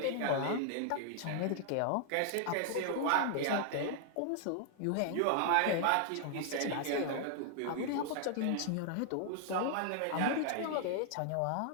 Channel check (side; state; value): both; different; correlation 0.00